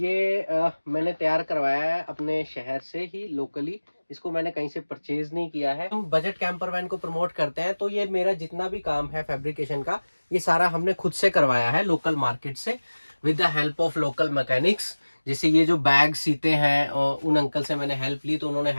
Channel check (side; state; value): both; inverted; correlation -1.00